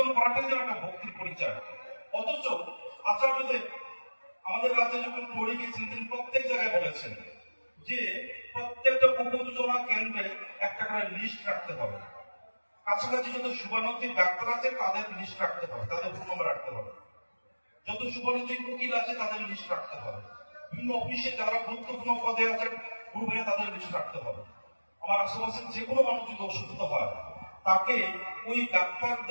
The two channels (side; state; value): both; inverted; correlation -1.00